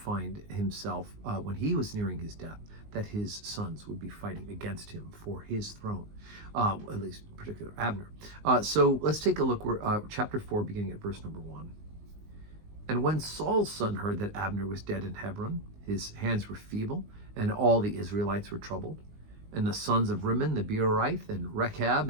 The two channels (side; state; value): left; late; 19 ms